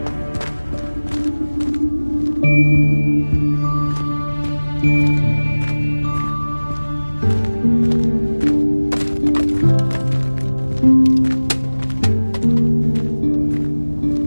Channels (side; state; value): both; inverted; correlation -1.00